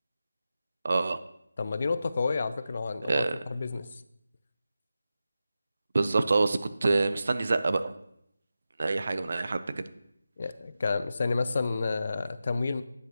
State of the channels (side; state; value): both; inverted; correlation -0.91